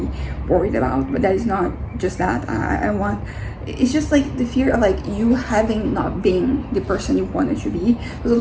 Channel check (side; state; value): both; identical; correlation 1.00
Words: worried about, but that is not just that. It's just like the fear of like you having not been the person you wanted to be. So